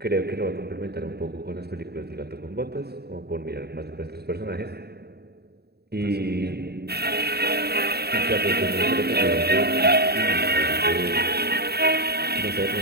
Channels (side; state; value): left; late; 0.47 ms